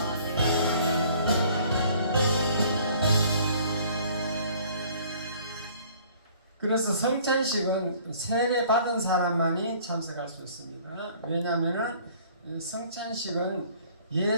성찬식은 세례 받은 사람만이 참석할 수 있습니다. 왜냐하면은 성찬식은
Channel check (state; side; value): inverted; both; correlation -0.55